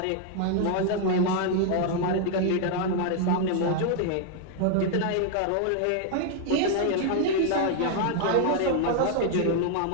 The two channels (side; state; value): both; different; correlation 0.00